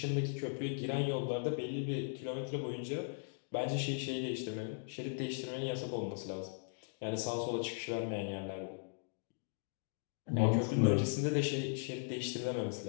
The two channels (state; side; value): silent; right; digital silence